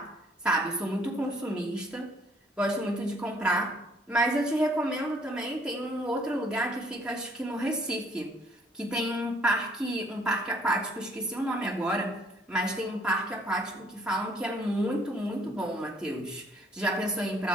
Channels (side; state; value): both; normal; correlation 0.63